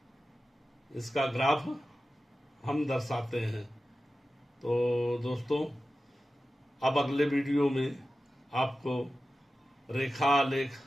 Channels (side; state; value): both; normal; correlation 0.94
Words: इसका ग्राफ हम दर्शाते हैं। तो दोस्तों, अब अगले वीडियो में आपको रेखा आलेख